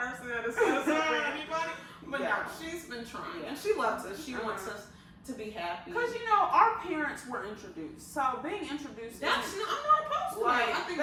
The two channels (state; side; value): identical; both; correlation 1.00